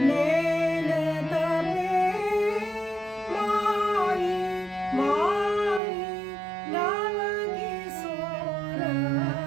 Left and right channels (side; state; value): left; drops out; at 5.8 s